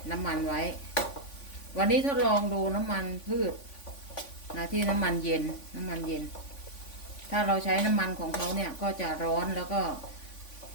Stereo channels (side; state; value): right; late; 3.5 ms